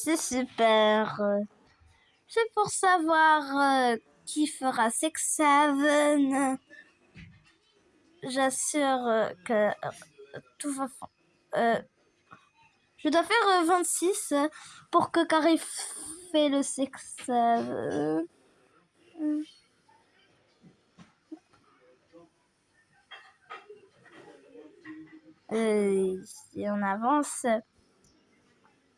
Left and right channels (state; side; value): identical; both; correlation 1.00